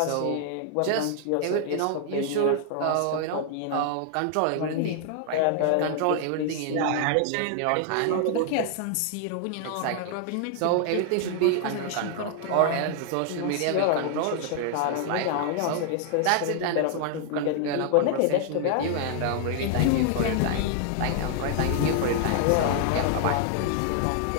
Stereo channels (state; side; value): different; both; correlation 0.00